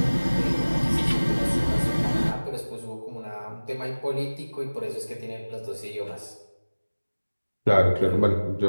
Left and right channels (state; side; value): inverted; both; correlation -1.00